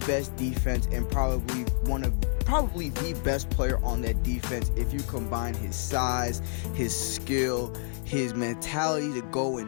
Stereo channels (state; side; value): silent; right; 57 dB below the other